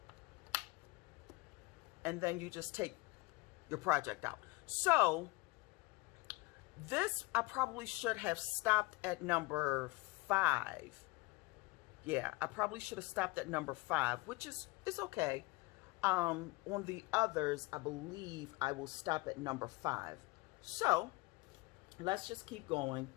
And then you just take your project out. So this, I probably should have stopped at number 5. Yeah, I probably should have stopped at number 5, which is okay. On the others, I believe I will stop at number 5. So let's just keep going.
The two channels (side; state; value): right; quieter; 23.0 dB